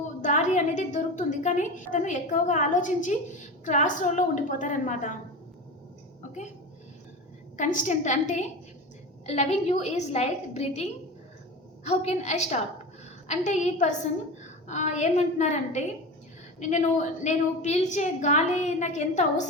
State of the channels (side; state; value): both; normal; correlation 0.28